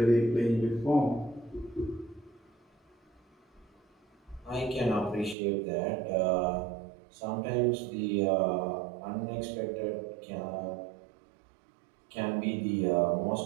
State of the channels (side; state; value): left; drops out; at 5.4 s